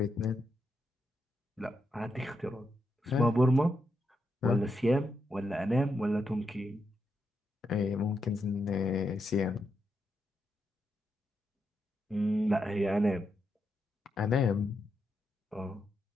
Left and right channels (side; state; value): both; normal; correlation 0.83